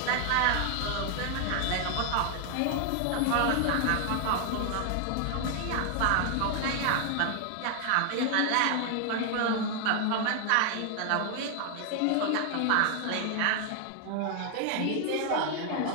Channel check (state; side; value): different; both; correlation 0.00